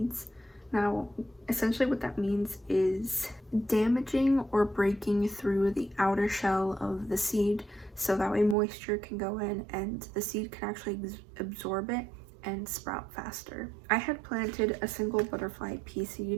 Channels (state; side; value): drops out; left; at 8.6 s